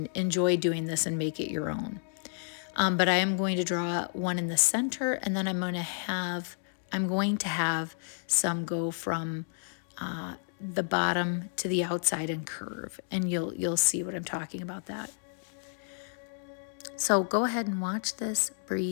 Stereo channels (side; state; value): right; silent; digital silence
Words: enjoy doing this and make it your own. But I am going to draw one in the center, and then I'm going to have some go from the bottom to the outside and curve, and you'll see what I'm talking about that. So go ahead and watch this,